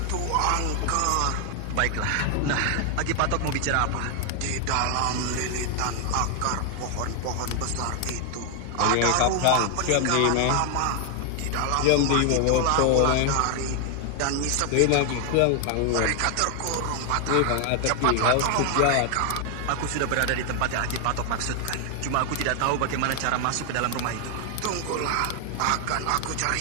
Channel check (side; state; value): both; different; correlation 0.00